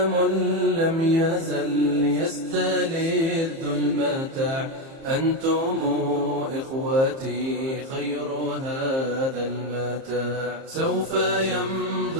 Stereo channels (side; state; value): left; late; 30 ms